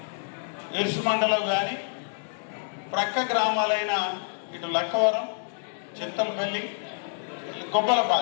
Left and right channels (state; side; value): silent; right; digital silence